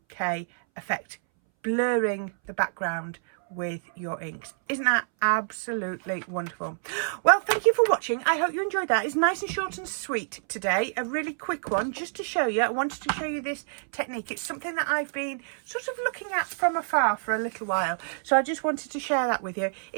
effect, blurring the background with your inks. Isn't that absolutely wonderful? Well, thank you for watching. I hope you enjoyed that. It's nice and short and sweet today. A really quick one just to show you. I wanted to show you this technique. It's something that I've been sort of looking at from afar for a little while. So I just wanted to share that with you.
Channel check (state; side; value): silent; left; 60 dB below the other